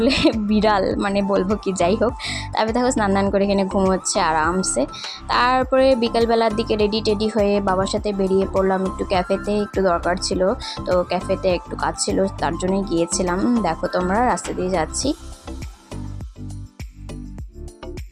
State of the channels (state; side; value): identical; both; correlation 1.00